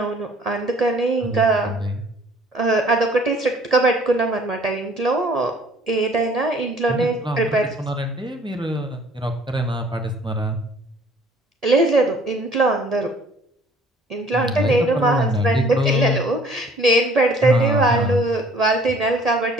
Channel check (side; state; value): both; normal; correlation 0.55